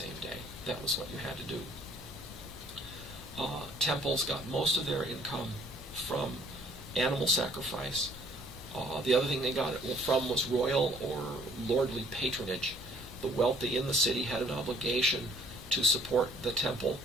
day. That was what you had to do. Temples got most of their income from animal sacrifice. The other thing they got it from was royal or lordly patronage. The wealthy in the city had an obligation to support the temple,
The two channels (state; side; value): noise; left; hum, 19 dB below the sound